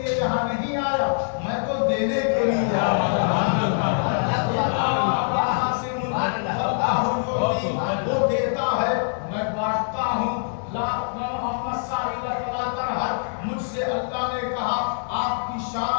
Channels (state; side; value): silent; right; digital silence